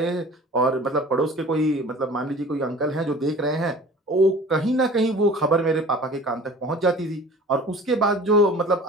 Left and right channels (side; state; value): both; normal; correlation 0.43